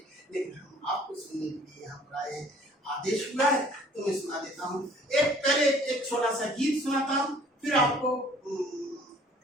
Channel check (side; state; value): both; normal; correlation 0.55